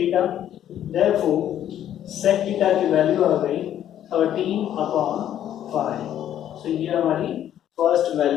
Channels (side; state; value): right; quieter; 11.0 dB